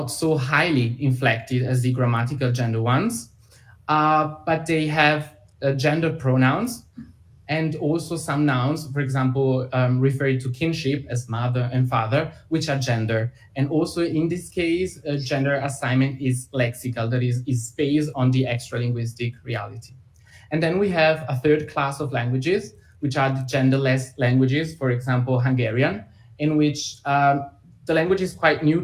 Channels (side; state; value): both; identical; correlation 1.00